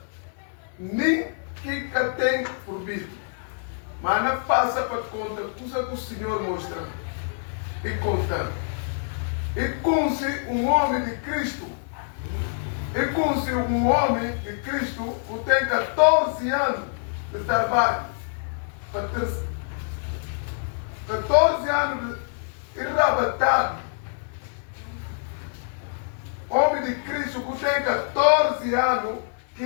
nem que tem por vir. Mas não passa para conta coisa que o Senhor mostra e conta. E com-se um homem de Cristo. E com-se um homem de Cristo que tem 14 anos de trabalho. 14 anos de enrabatado. Homem de Cristo que tem 14 anos que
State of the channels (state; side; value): silent; right; 59 dB below the other